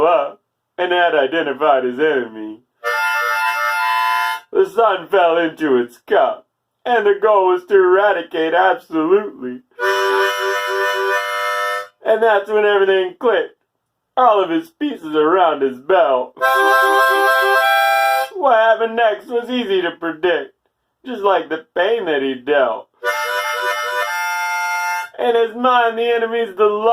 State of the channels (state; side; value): identical; both; correlation 1.00